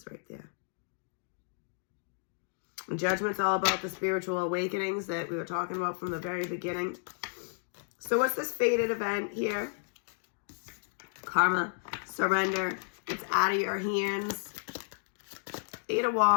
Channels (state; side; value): silent; right; digital silence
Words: right there. And Judgment's all about the spiritual awakenings that we were talking about from the very beginning. So what's this fated event here? Karma, surrender. It's out of your hands. 8 of